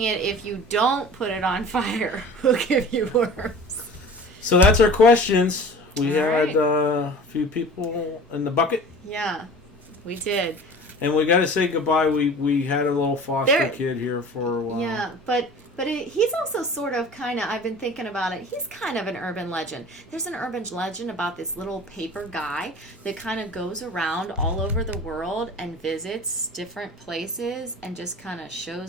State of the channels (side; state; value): both; normal; correlation 0.41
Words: it if you don't put it on fire will give you worms. So that's our questions. We All had right. a few people in the bucket. Yeah, we did. And we got to say goodbye. We had a little foster There- kid here for a while. Yeah, but he's also sort of kind of, I've been thinking about it, he's kind of an urban legend. There's an urban legend about this little paper guy that kind of goes around all over the world and visits different places and just kind of